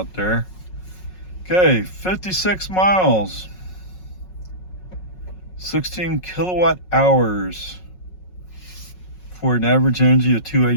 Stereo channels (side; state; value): right; late; 5.5 ms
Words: there. Okay, 56 miles, 16 kilowatt hours for an average energy of